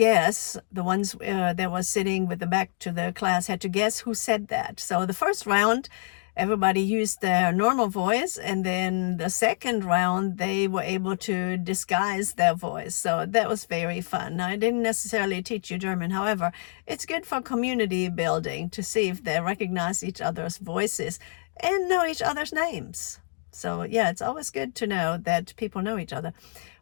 the ones that was sitting with the back to the class had to guess who said that. So the first round, everybody used their normal voice, and then the second round, they were able to disguise their voice. So that was very fun. Now, I didn't necessarily teach you German. However, it's good for community building to see if they recognize each other's voices and know each other's names. So yeah, it's always good to know that people know each other.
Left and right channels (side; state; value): right; silent; digital silence